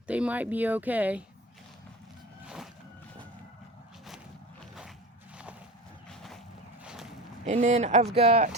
they might be okay. And then I've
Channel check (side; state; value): both; normal; correlation 0.30